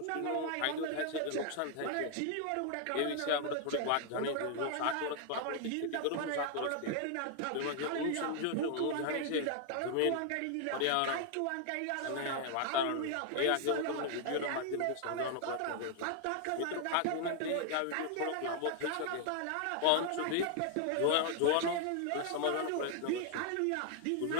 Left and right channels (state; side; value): different; both; correlation 0.00